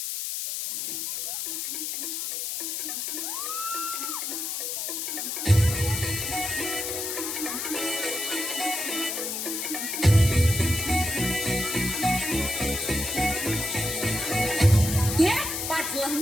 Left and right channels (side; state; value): left; noise; hiss, 3 dB below the sound